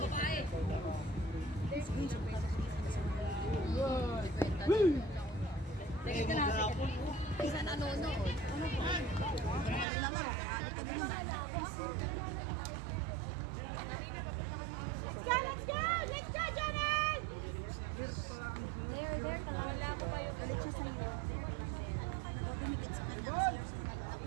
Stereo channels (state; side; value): drops out; left; at 9.9 s